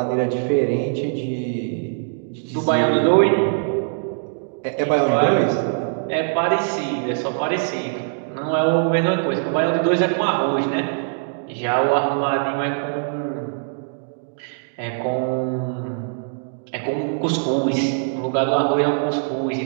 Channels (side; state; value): left; silent; digital silence